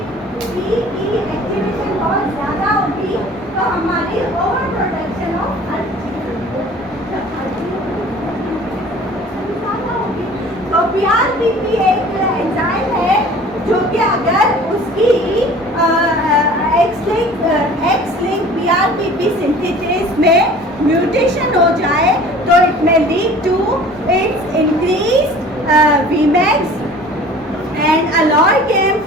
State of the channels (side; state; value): both; normal; correlation 0.46